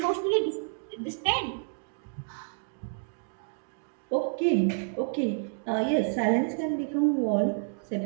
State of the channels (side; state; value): left; silent; digital silence